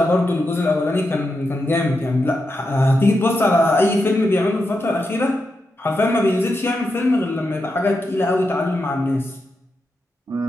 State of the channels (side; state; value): both; normal; correlation 0.87